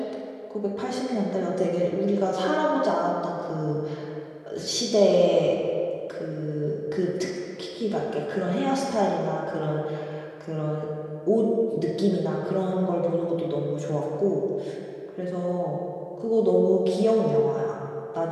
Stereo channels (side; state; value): both; identical; correlation 1.00